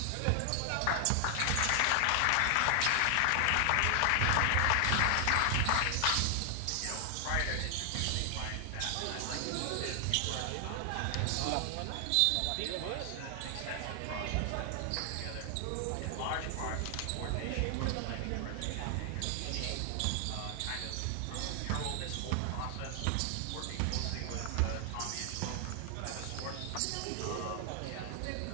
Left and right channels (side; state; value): both; different; correlation 0.00